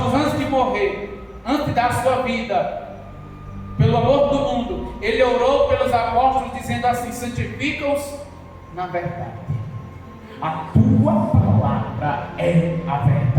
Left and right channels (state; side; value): identical; both; correlation 1.00